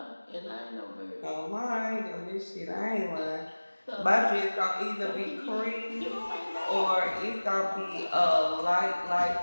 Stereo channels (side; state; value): both; inverted; correlation -1.00